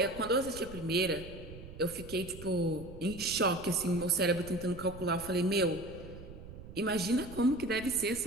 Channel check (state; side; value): noise; right; rumble, 14 dB below the sound